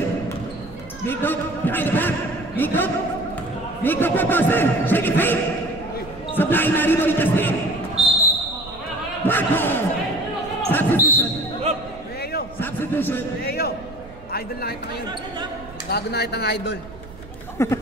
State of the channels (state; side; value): noise; right; rumble, 18 dB below the sound